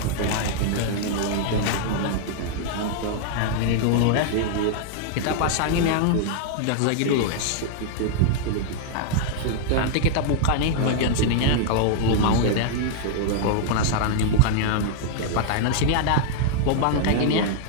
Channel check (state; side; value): different; both; correlation 0.00